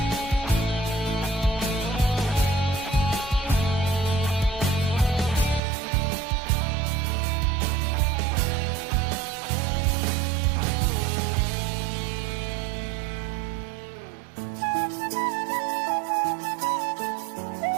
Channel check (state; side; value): drops out; left; at 5.6 s